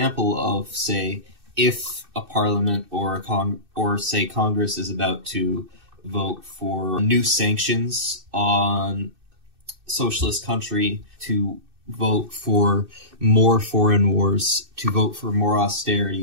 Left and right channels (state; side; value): late; left; 2.6 ms